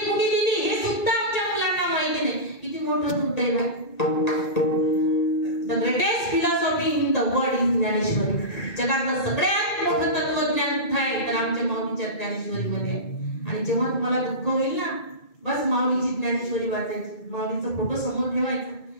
कुणी दिली हे सुद्धा आमच्या मुलांना माहिती नाही. किती मोठं दुर्दैव आहे. The greatest philosophy in the world is Dnyaneshwari. जगातलं सगळ्यात मोठं तत्वज्ञान कुठे आहे तर आमच्या माऊलीच्या ज्ञानेश्वरीमध्ये आहे. आणि जेव्हा तुम्हाला दुःख होईल ना, बस माऊलीची ज्ञानेश्वरी वाचायची, माऊलीचा फोटो समोर ठेवायचा,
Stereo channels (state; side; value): late; right; 1.8 ms